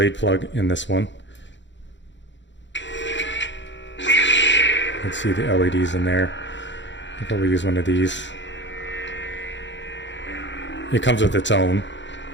plug in this one. You can see the LEDs in there. I'll probably use one of these. It comes with its own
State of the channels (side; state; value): right; late; 0.53 ms